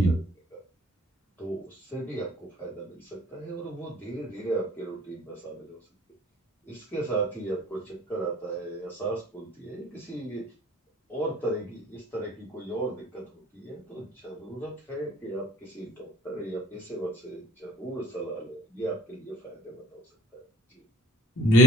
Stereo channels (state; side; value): normal; both; correlation 0.51